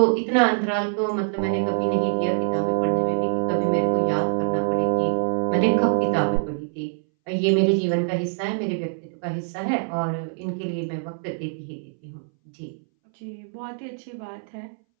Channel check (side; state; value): left; silent; 62 dB below the other